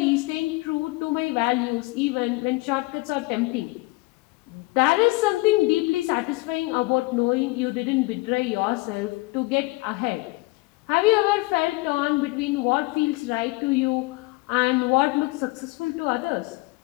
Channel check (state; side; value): quieter; right; 23.3 dB